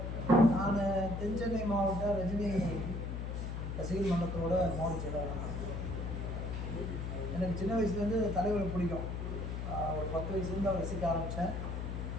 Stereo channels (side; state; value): left; noise; hum, 4 dB below the sound